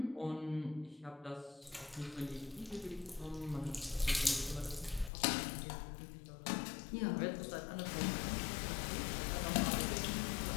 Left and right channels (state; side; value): drops out; right; at 5.1 s